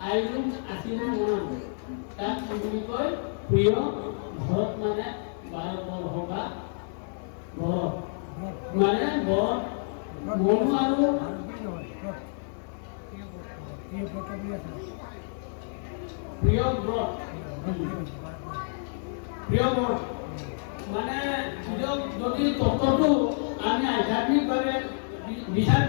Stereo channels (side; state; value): right; silent; digital silence